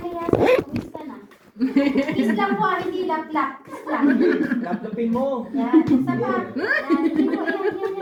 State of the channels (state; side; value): identical; both; correlation 1.00